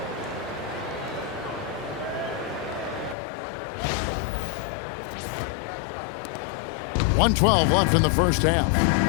.112 left in the first half.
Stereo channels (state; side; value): drops out; right; at 3.2 s